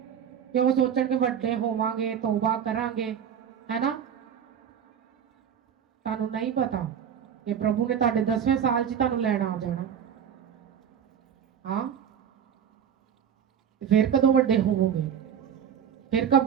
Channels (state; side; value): quieter; left; 8.4 dB